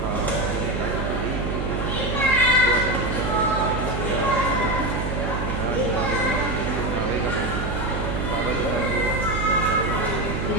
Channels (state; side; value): noise; right; hum, 3 dB below the sound